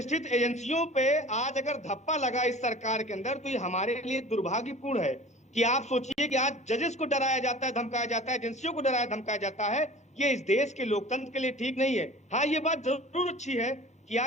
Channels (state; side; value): normal; both; correlation 0.42